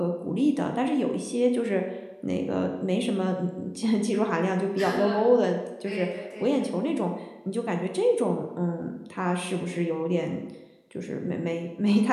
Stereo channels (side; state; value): both; identical; correlation 1.00